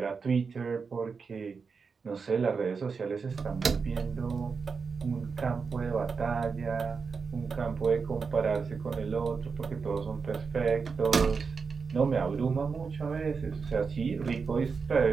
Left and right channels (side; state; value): left; quieter; 5.2 dB